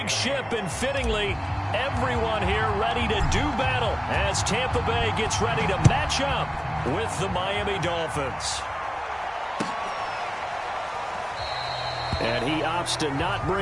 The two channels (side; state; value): both; identical; correlation 1.00